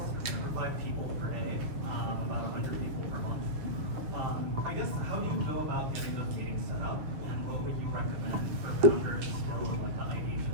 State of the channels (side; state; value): left; late; 6.4 ms